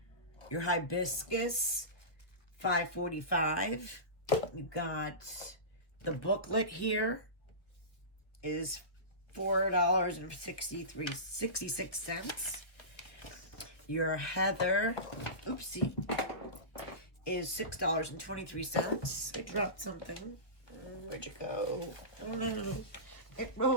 Your hibiscus, $5.45. You got the booklet here is $4.66. Your heather, oopsie, is $6.23. I dropped something. Where'd you go? Oh no, it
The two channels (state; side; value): late; right; 1.1 ms